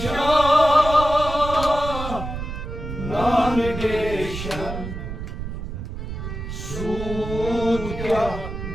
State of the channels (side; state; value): right; noise; rumble, 7 dB below the sound